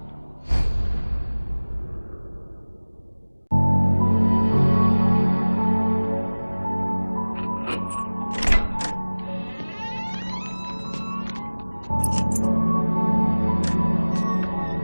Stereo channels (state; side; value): inverted; both; correlation -1.00